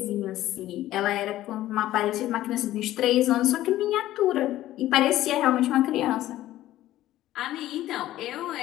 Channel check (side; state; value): right; quieter; 14.4 dB